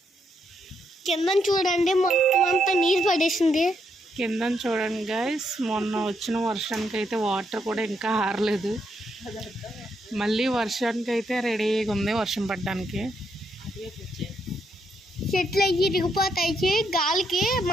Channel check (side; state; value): both; normal; correlation 0.77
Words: కింద చూడండి, మొత్తం అంతా నీరు పడేసింది. కింద చూడండి గైస్, మొన్న వచ్చిన వర్షానికి అయితే వాటర్ కూడా ఇంకా ఆరలేదు. మళ్ళీ వర్షానికి అయితే రెడీగా ఉంది వర్షం పడడానికి. చెట్లు అయ్యి ఇరిగిపోతాయి, గాలికి